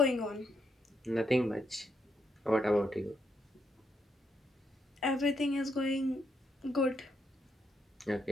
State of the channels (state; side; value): normal; both; correlation 0.78